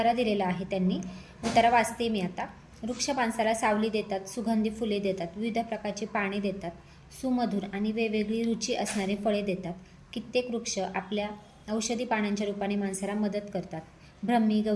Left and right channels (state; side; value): identical; both; correlation 1.00